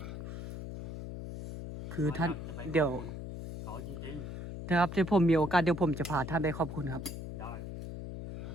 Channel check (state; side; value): noise; left; hum, 7 dB below the sound